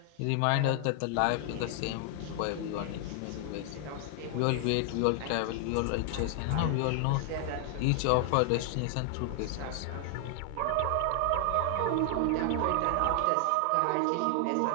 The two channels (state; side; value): different; both; correlation 0.00